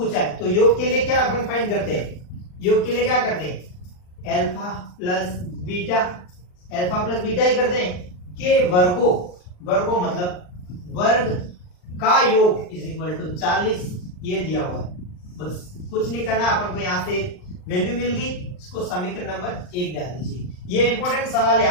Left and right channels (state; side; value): late; right; 39 ms